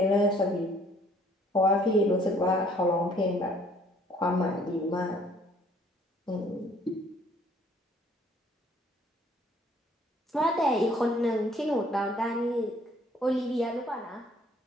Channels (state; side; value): normal; both; correlation 0.60